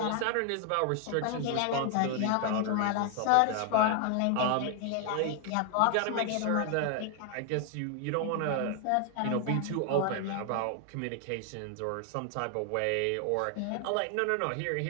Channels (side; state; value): both; different; correlation 0.00